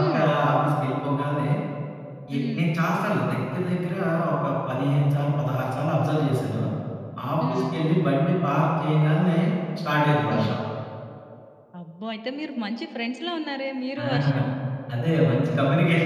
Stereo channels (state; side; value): identical; both; correlation 1.00